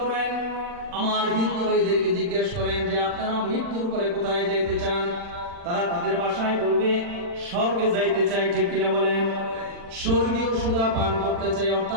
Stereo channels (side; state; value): left; late; 40 ms